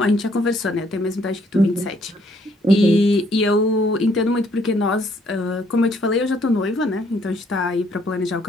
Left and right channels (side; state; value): both; normal; correlation 0.67